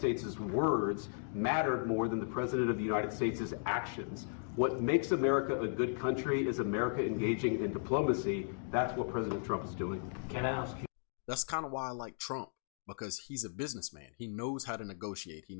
words mattered more than the President of the United States' actions. What makes America a good country is America engaging in diplomacy. That's what President Trump is doing. Can I ask you? That's kind of why I like Trump, because he's a businessman. He knows how to negotiate. He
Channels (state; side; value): silent; right; digital silence